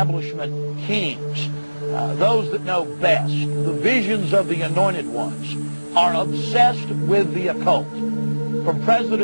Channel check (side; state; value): both; inverted; correlation -1.00